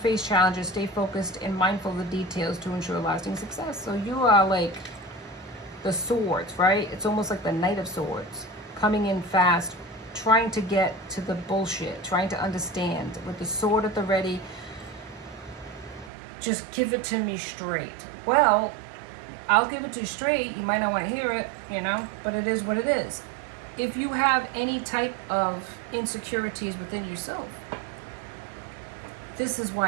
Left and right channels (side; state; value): left; drops out; at 16.1 s